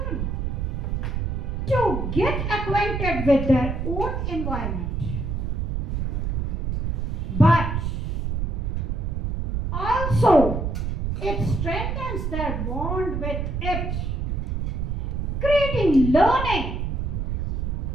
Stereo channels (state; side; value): noise; right; rumble, 1 dB below the sound